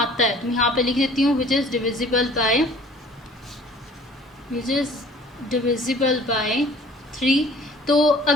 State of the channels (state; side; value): normal; both; correlation 0.51